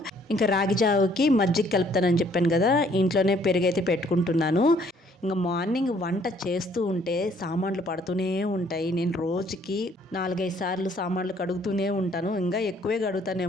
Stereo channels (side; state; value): both; normal; correlation 0.63